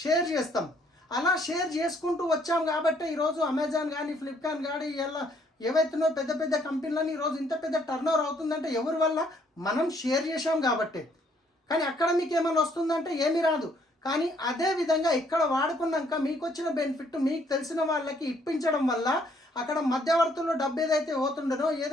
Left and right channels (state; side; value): normal; both; correlation 0.66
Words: షేర్ చేస్తాం. అలా షేర్ చేసుకుంటూ వచ్చాం కాబట్టి ఈరోజు అమెజాన్ కానీ, ఫ్లిప్కార్ట్ కానీ, ఇలా ఏవైతున్నాయో పెద్ద పెద్ద కంపెనీలని ఈరోజు ఇంత పెద్ద టర్న్ ఓవర్ అవుతుందంటే ఎవరి వల్ల? మనం షేర్ చేసాం కాబట్టి. కానీ అక్కడ మీకు ఏమైనా వస్తుందంటే ఏమీ రాదు. కానీ అదే విధంగా ఇక్కడ వాడుకున్నాక మీకు వచ్చిన బెనిఫిట్ మీకు తెలిసిన వాళ్ళకి ఇప్పించడం వల్ల అక్కడ మధ్యవర్తుల్లో డబ్బు ఏదైతే పోతుండనో,